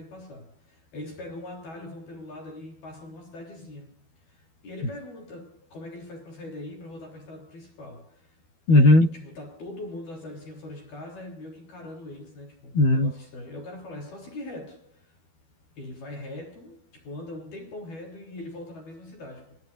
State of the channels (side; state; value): right; late; 12 ms